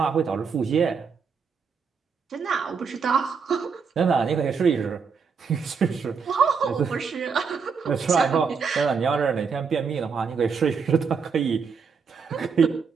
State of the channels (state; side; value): quieter; left; 5.8 dB